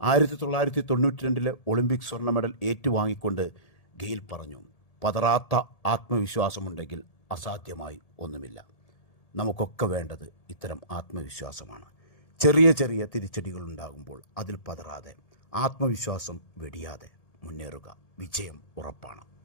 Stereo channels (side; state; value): right; late; 1.8 ms